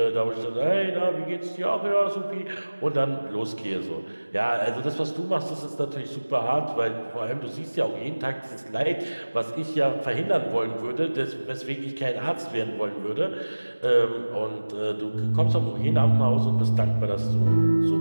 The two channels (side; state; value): both; inverted; correlation -1.00